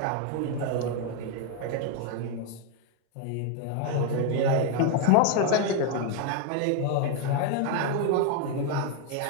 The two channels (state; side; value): different; both; correlation 0.01